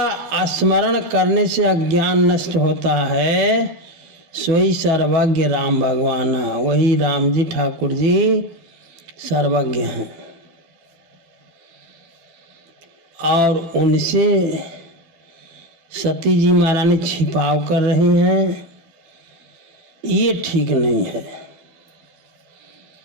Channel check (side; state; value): left; late; 12 ms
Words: स्मरण करने से अज्ञान नष्ट होता है, सोई सर्वज्ञ राम भगवाना। वही राम जी ठाकुर जी सर्वज्ञ हैं, और उनसे सती जी महारानी छिपाव कर रही हैं। ये ठीक नहीं है।